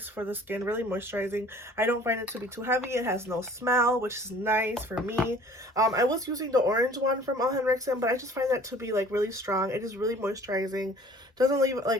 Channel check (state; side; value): normal; both; correlation 0.50